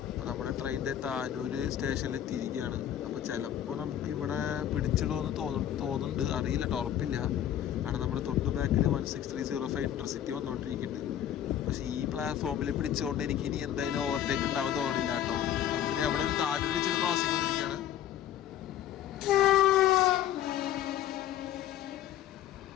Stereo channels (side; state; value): right; quieter; 10.9 dB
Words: അപ്പോൾ നമ്മുടെ ട്രെയിനിൻ്റെ താനൂർ സ്റ്റേഷനിൽ എത്തിയിരിക്കുകയാണ്. അപ്പോൾ ചിലപ്പോൾ നമുക്ക് ഇവിടെ പിടിച്ചിടുമെന്ന് തോന്നുന്നുണ്ട്, അറിയില്ല കേട്ടോ, ഉറപ്പില്ല. കാരണം നമ്മുടെ തൊട്ട് ബാക്കിൽ 16305 ഇന്റർസിറ്റി വന്നുകൊണ്ടിരിക്കുന്നുണ്ട്. പക്ഷേ ഈ പ്ലാറ്റ്ഫോമിൽ പിടിച്ചുകൊണ്ട് എനിക്ക് ഇനി എന്തായാലും ഓവർടേക്ക് ഉണ്ടാവാൻ തോന്നില്ല കേട്ടോ. നമുക്കിനി അവിടെ ഒരു താഴെ വെച്ചൊരു ക്രോസിംഗ് വന്നിരിക്കുകയാണ്.